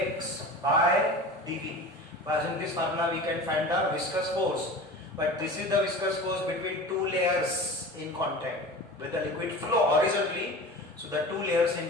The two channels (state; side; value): normal; both; correlation 0.35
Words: by dv. By using this formula we can find the viscous force, but this is the viscous force between two layers in contact with the liquid flow horizontally. So the two layers